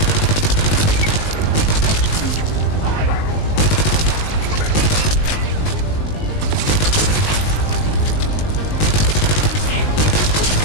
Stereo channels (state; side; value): late; right; 19 ms